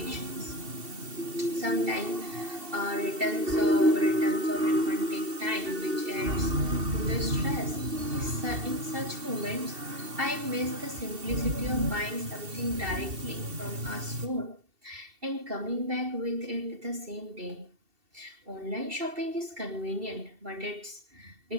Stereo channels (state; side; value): late; left; 2.7 ms